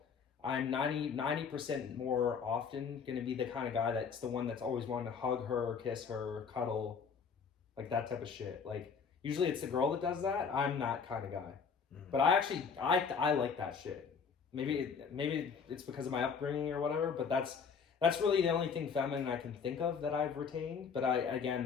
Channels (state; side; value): quieter; right; 6.1 dB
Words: I'm 90% more often going to be the kind of guy that's the one that's always wanting to hug her, kiss her, cuddle, like that type of shit. Like usually it's the girl that does that. I'm that kind of guy. But I like that shit. Maybe it's because of my upbringing or whatever, but that's really the only thing feminine I can think of that I've retained. But I